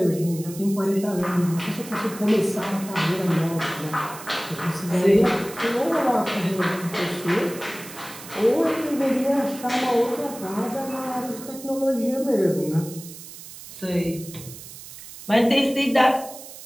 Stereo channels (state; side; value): noise; right; hiss, 15 dB below the sound